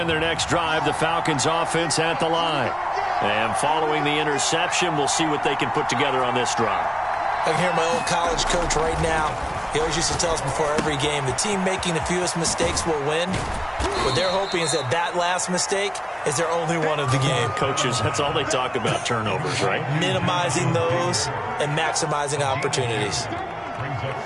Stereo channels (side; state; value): both; identical; correlation 1.00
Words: their next drive, the Falcons offense at the line. And following the interception, we'll see what they can put together on this drive. I can hear my old college coach right now. He always used to tell us before every game, the team making the fewest mistakes will win. What they're hoping is that last mistake is their only one of the game. Coaches, that's all they talk about, turnovers, right? Minimizing those and maximizing opportunities.